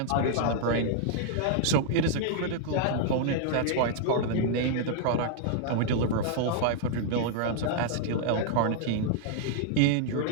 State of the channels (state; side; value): different; both; correlation -0.01